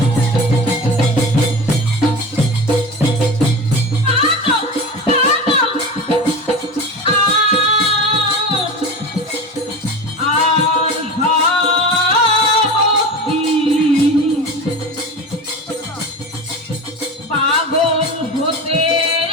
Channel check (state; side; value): normal; both; correlation 0.29